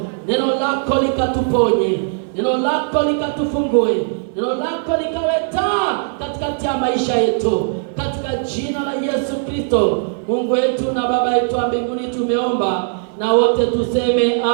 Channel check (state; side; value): silent; left; 67 dB below the other